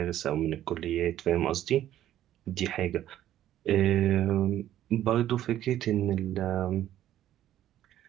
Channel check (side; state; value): left; quieter; 12.3 dB